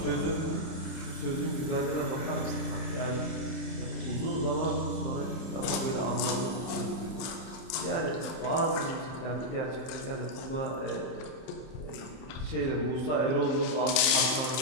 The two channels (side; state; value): right; late; 31 ms